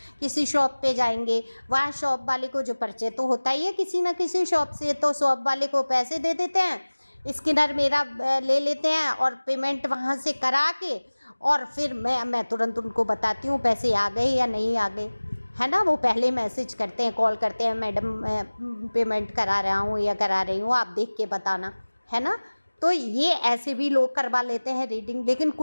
किसी शॉप पे जाएंगे, वहाँ शॉप वाले को जो परिचय तो होता ही है किसी ना किसी शॉप से, तो शॉप वाले को पैसे दे देते हैं, स्कैनर मेरा ले लेते हैं और पेमेंट वहाँ से करा के, और फिर मैं तुरंत उनको बताती हूँ पैसे आ गए या नहीं आ गए, है ना। वो पहले मैसेज करते हैं, कॉल करते हैं, मैडम मैं पेमेंट करा रहा हूँ या करा रही हूँ, आप देख के बताना, है ना। तो ये ऐसे भी लोग करवा लेते हैं रीडिंग। लेकिन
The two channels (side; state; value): both; inverted; correlation -1.00